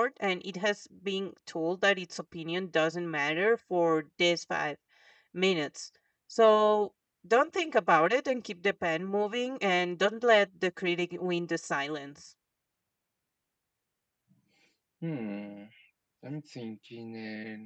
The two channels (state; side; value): identical; both; correlation 1.00